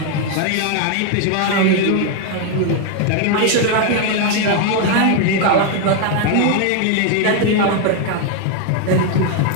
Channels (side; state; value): both; different; correlation 0.01